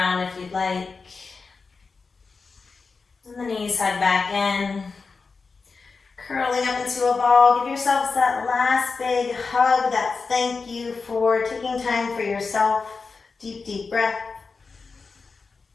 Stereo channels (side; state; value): right; quieter; 4.5 dB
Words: if you'd like. And the knees hug back in. Curling up into a ball. Give yourselves that last big hug, that thank you for taking time for yourself. Deep, deep breath.